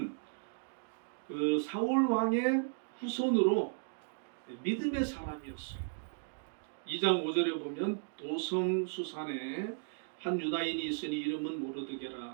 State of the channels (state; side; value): silent; left; digital silence